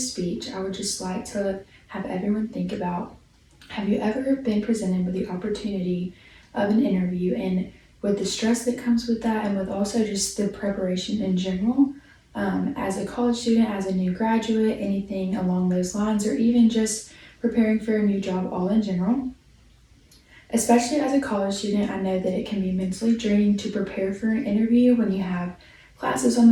speech, I would just like to have everyone think about, have you ever been presented with the opportunity of an interview, and with the stress that comes with that, and with also just the preparation in general, as a college student, as a new graduate, anything along those lines, or even just preparing for a new job all in general. Especially as a college student, I know that it can be mentally draining to prepare for an interview when you have classes on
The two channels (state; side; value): identical; both; correlation 1.00